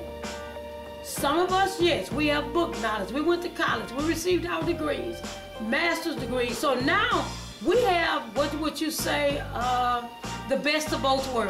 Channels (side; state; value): both; identical; correlation 1.00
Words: Some of us, yes, we have book knowledge. We went to college. We received our degrees, master's degrees. So now we have, what would you say, the best of both